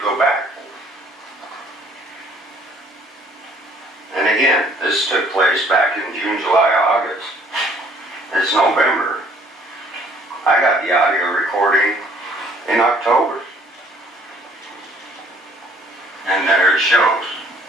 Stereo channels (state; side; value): normal; both; correlation 0.59